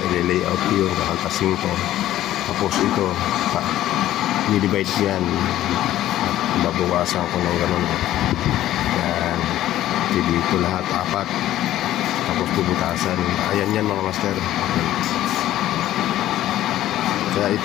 I-layout ko yun. Kakaltasin ko. Tapos ito, i-divide ko yan. Babawasan ko ng ganun. Yan. Dito lahat, 4. Tapos bubutasan. Ayan yan mga master. Kaya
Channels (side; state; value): right; quieter; 13.5 dB